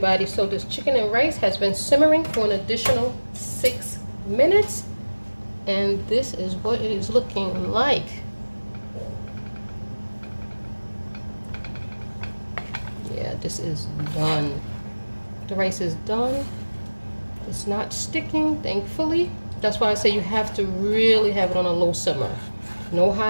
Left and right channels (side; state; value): both; inverted; correlation -1.00